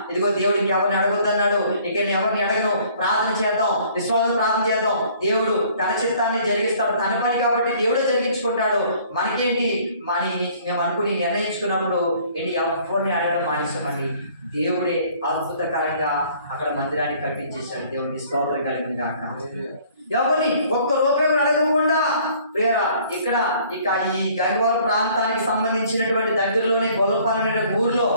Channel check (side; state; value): both; inverted; correlation -0.57